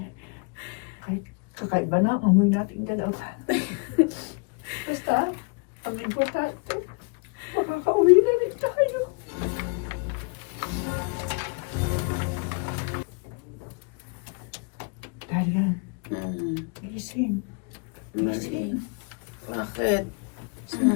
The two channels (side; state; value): right; quieter; 35.7 dB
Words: Kahit kakaiba na ang amoy nating dalawa. Basta, ang importante, makakauwi na rin tayo. Daria, gising. Gising. Bakit? Saan